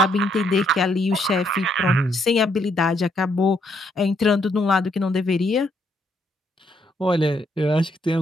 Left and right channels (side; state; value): both; normal; correlation 0.73